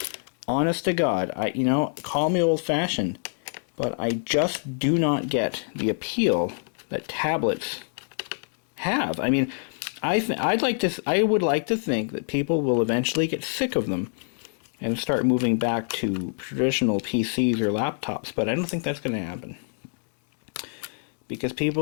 Honest to God, call me old-fashioned, but I just do not get the appeal that tablets have. I mean, I would like to think that people will eventually get sick of them and start moving back to traditional PCs or laptops, but I don't think that's going to happen. Because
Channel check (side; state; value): right; silent; digital silence